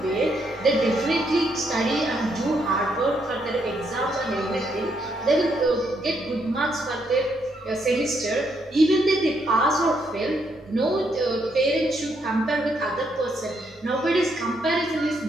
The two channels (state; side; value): normal; both; correlation 0.75